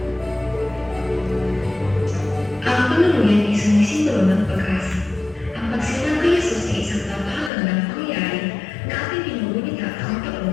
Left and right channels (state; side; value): drops out; right; at 7.5 s